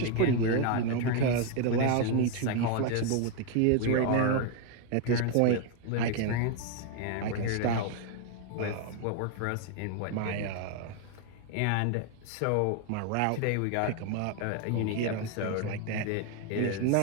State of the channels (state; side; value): different; both; correlation 0.01